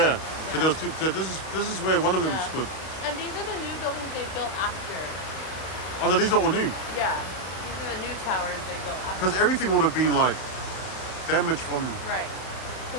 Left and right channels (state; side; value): late; right; 32 ms